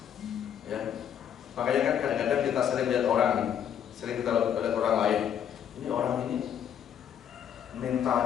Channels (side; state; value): right; quieter; 9.2 dB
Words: Ya. Makanya kan kadang-kadang kita sering lihat orang, sering kita lihat orang lain. Ini orang ini